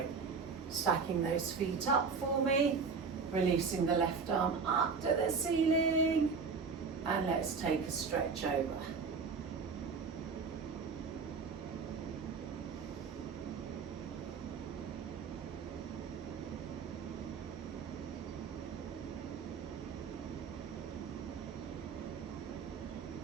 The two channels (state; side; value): quieter; left; 5.3 dB